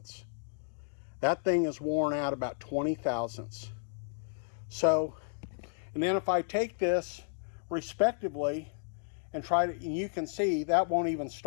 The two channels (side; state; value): right; silent; digital silence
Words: That thing is worn out about 20 thousandths. So, and then if I take this respectively and and you can see that won't even